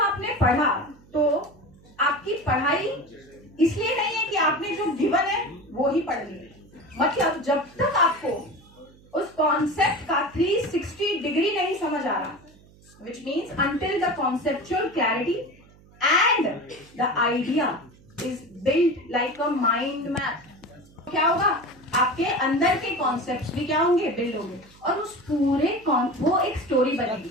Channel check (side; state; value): right; noise; hum, 26 dB below the sound